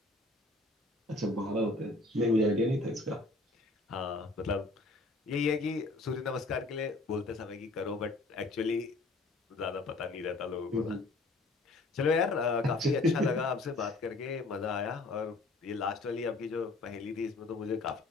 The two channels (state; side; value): quieter; right; 3.0 dB